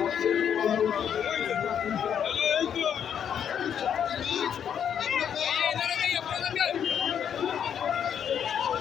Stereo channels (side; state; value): right; quieter; 8.5 dB